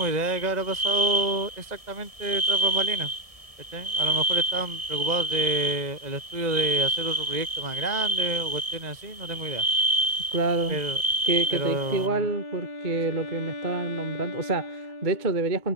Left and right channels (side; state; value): left; late; 1.7 ms